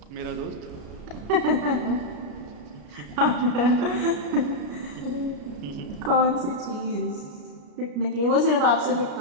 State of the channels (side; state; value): left; late; 33 ms